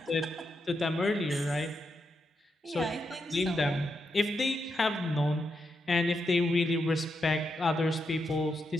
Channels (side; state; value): both; normal; correlation 0.84